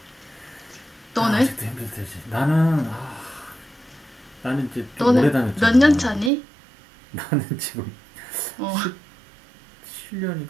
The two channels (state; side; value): drops out; left; at 6.3 s